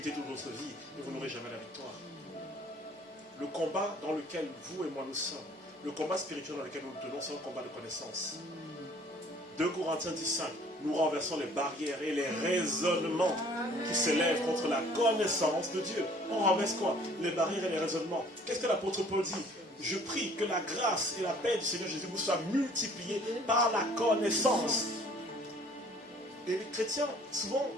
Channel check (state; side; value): normal; both; correlation 0.55